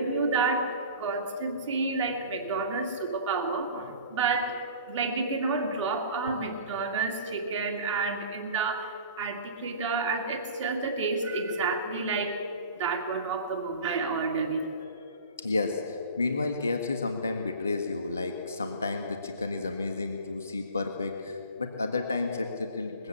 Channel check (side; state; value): both; inverted; correlation -0.40